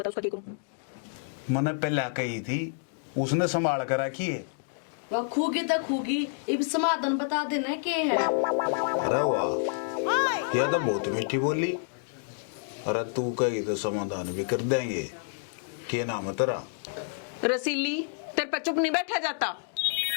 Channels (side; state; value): right; silent; digital silence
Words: उसका क्या करूं। मैंने पहले कही थी, उसने संभाल कर रखी है। वह खूगी तो खूगी, इब समाधान बता देना के है। अरे वाह, यह तो बहुत मीठी बोली। अरे तू कही तो समाधान भी कर देंगे। क्या नाम है तेरा? रसीली, तेरे पर चुप नहीं बैठा जाता।